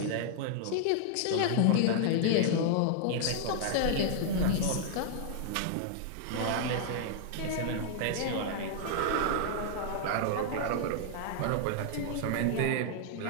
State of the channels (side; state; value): both; different; correlation -0.01